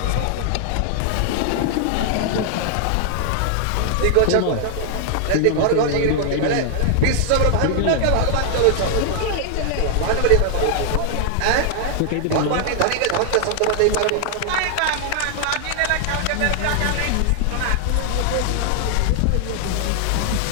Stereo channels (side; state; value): both; different; correlation 0.00